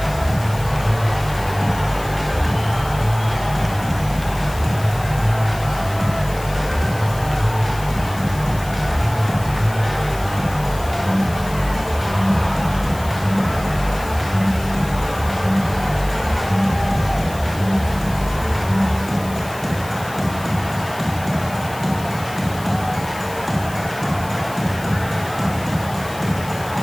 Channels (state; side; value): noise; left; hiss, 17 dB below the sound